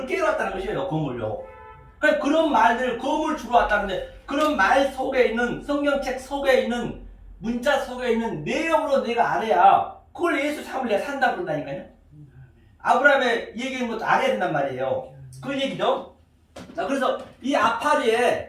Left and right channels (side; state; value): both; identical; correlation 1.00